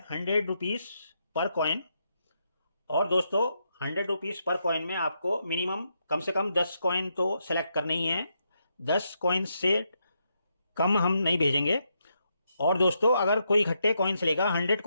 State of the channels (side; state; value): both; inverted; correlation -0.81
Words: 100 रुपीज़ पर कॉइन। और दोस्तों 100 रुपीज़ पर कॉइन में आपको मिनिमम कम से कम 10 कॉइन तो सेलेक्ट करने ही हैं। 10 कॉइन से कम हम नहीं भेजेंगे। और दोस्तों अगर कोई इकट्ठे कॉइन्स लेगा, 100